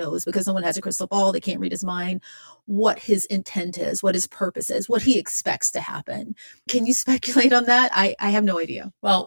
because no one has a crystal ball, they can't read his mind, what his intent is, what his purpose is, what he expects to happen. Can you speculate on that? I have no idea. Well,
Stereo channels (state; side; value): inverted; both; correlation -1.00